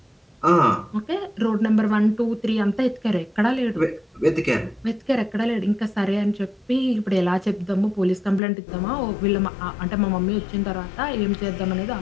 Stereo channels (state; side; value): drops out; right; at 8.4 s